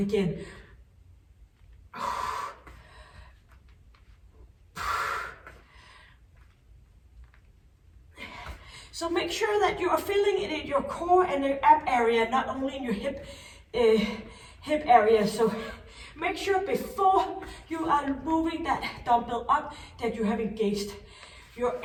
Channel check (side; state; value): both; identical; correlation 1.00